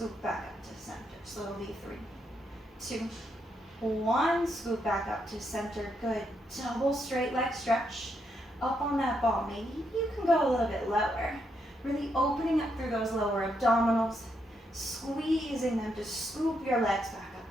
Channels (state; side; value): normal; both; correlation 0.79